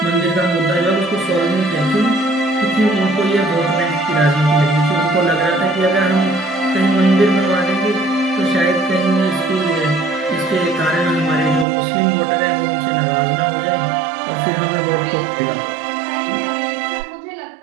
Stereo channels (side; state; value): left; drops out; at 11.7 s